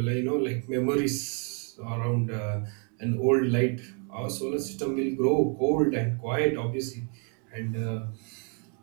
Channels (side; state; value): left; quieter; 39.0 dB